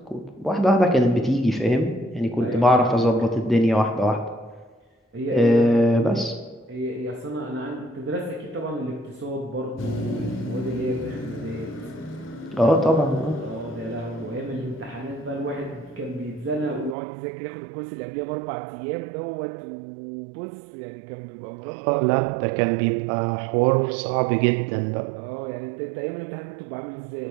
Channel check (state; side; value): drops out; left; at 16.9 s